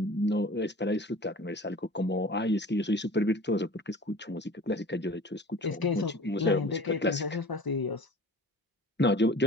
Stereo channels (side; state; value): both; normal; correlation 0.42